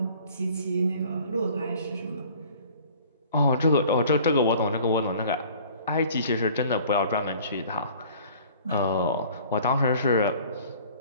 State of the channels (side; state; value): both; inverted; correlation -0.50